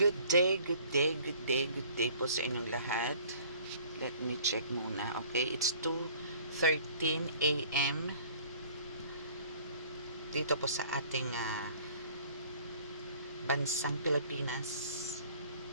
Good day, good day, good day, good day po sa inyong lahat. Let me check muna. Okay, it's 2:13 AM dito po sa ating bansang Pilipinas.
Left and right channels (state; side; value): inverted; both; correlation -0.53